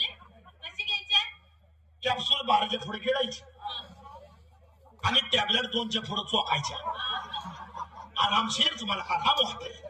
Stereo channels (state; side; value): identical; both; correlation 1.00